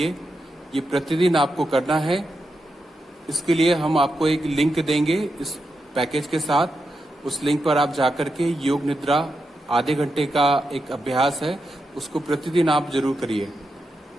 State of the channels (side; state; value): both; normal; correlation 0.86